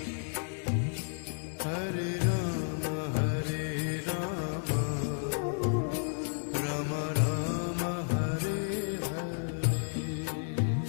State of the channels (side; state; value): right; silent; 56 dB below the other